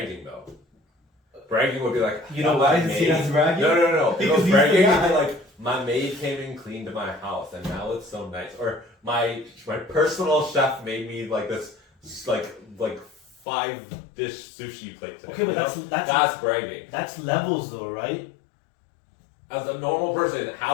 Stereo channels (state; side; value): drops out; right; at 13.4 s